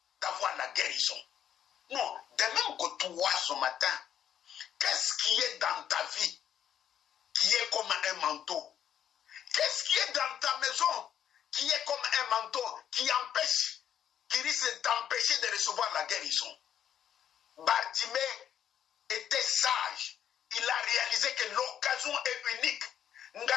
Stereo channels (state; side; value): quieter; right; 9.6 dB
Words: d'avoir la guérison. Non, de même que toi ce matin, qu'est-ce qui est dans ta vie qui est comme un manteau? Qu'est-ce qui est dans ta maison qui est comme un manteau qui empêche, qui risque d'empêcher de recevoir la guérison? Bartimée était sage. Il a réalisé que l'occasion est unique.